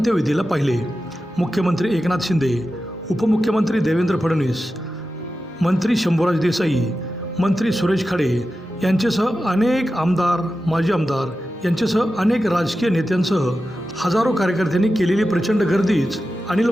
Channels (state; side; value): normal; both; correlation 0.92